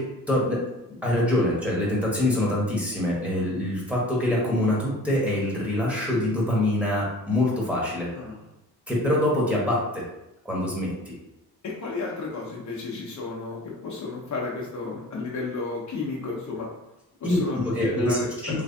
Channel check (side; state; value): both; normal; correlation 0.45